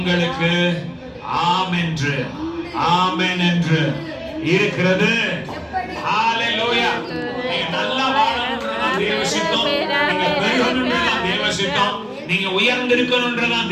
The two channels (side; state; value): both; identical; correlation 1.00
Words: ஆமென் என்று, ஆமென் என்று இருக்கிறது. ஹல்லேலூயா. நீங்க நல்லா வாழணும்ன்றதான் தேவ சித்தம். நீங்க பெருகணும்ன்றதான் தேவ சித்தம். நீங்க உயர்ந்திருக்கணும்ன்றதான்